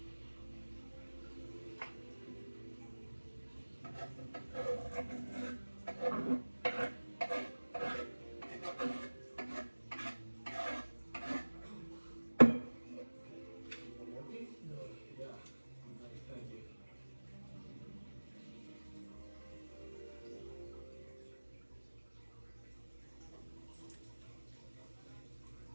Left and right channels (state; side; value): inverted; both; correlation -1.00